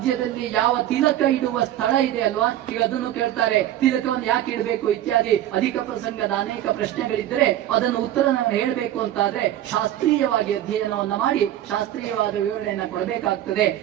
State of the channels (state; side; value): quieter; left; 12.6 dB